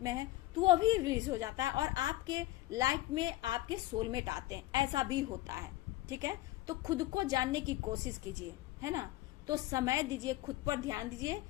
में है, तो वो भी रिलीज हो जाता है और आपके लाइफ में आपके सोलमेट आते हैं, ऐसा भी होता है। ठीक है, तो खुद को जानने की कोशिश कीजिए, है ना। तो समय दीजिए, खुद पर ध्यान दीजिए,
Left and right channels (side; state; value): right; quieter; 17.4 dB